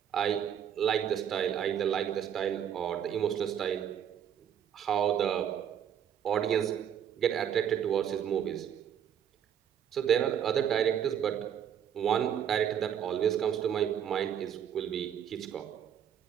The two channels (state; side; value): quieter; left; 9.1 dB